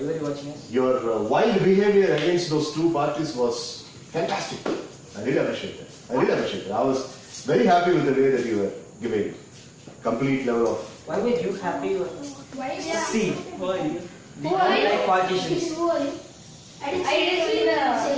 were you watching us? Your wild behavior against those two parties was fantastic. I really appreciate it. I was very happy with the way that you were giving complete level of. Why were you happy? Why? See, why? We don't like politicians. I didn't see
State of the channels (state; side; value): identical; both; correlation 1.00